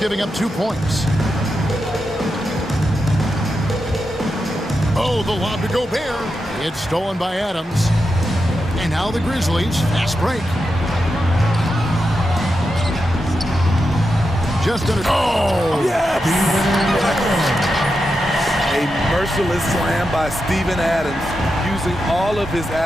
up 2 points. Oh, the lob to Gobert. It's stolen by Adams. And now the Grizzlies, fast break. Just under. Oh! Yes! A merciless slam by Steven Adams, using all of his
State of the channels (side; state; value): both; normal; correlation 0.88